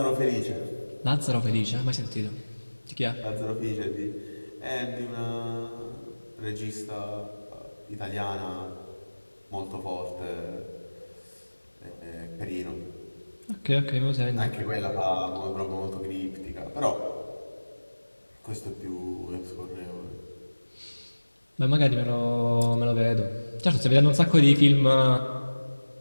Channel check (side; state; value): both; inverted; correlation -1.00